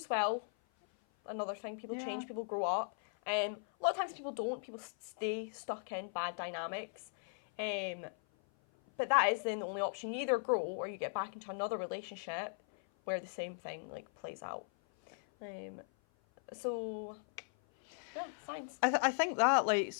well. Another thing, people change, people grow up. A lot of times people don't. People stay stuck in bad dynamics. But that is then the only option. You either grow or you get back into another relationship where the same thing like plays out. So, yeah, signs. I think that, like,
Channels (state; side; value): silent; right; 53 dB below the other